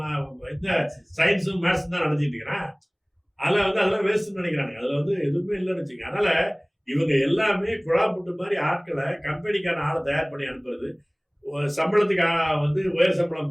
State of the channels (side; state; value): both; identical; correlation 1.00